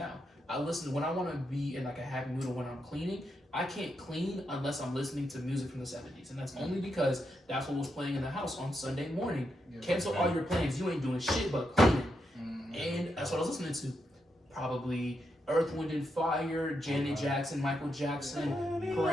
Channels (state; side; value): normal; both; correlation 0.83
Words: I listen when I want to be in like a happy mood or when I'm cleaning. I can't clean unless I'm listening to music from the 70s, and that's only because that's what was playing in the house on Sunday morning. Cancel all your plans. You ain't doing shit but cleaning, and that's what I was listening to. Probably Earth, Wind and Fire, Janet Jackson, Michael Jackson,